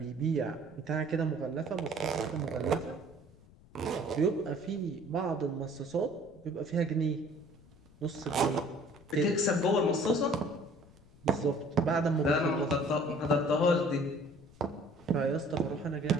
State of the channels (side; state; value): left; noise; rumble, 25 dB below the sound